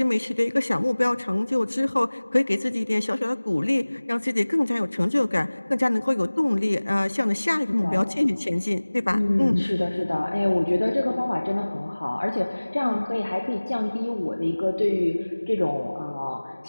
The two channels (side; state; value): both; inverted; correlation -1.00